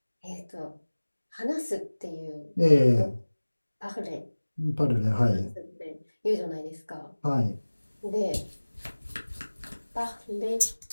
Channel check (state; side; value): inverted; both; correlation -1.00